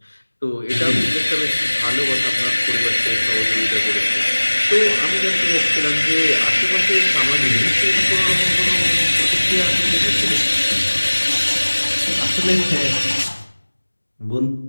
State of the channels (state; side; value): inverted; both; correlation -1.00